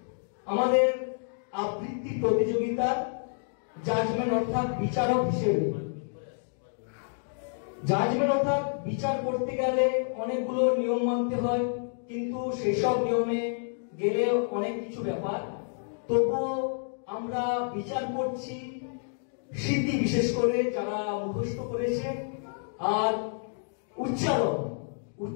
আমাদের আবৃত্তি প্রতিযোগিতার জাজমেন্ট অর্থাৎ বিচারক হিসেবে। জাজমেন্ট অর্থাৎ বিচার করতে গেলে অনেকগুলো নিয়ম মানতে হয়, কিন্তু সেসব নিয়মে গেলে অনেক কিছু ব্যাপার। তবুও আমরা বিচার করছি স্মৃতি, বিশেষ করে যারা মুখস্থ করেছে, আর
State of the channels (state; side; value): silent; right; digital silence